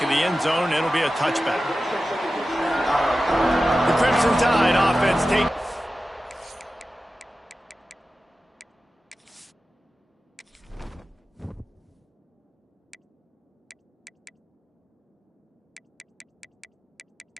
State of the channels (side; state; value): both; normal; correlation 0.94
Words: of the end zone. It'll be a touchback. The Crimson Tide offense takes...